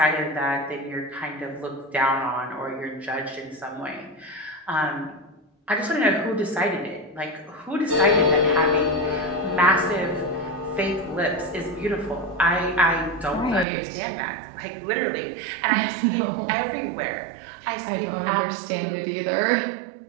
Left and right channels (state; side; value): drops out; left; at 13.7 s